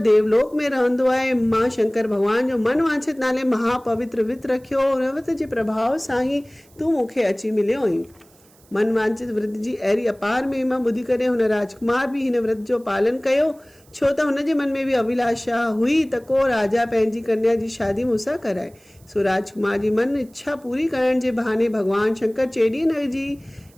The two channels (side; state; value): right; noise; hiss, 30 dB below the sound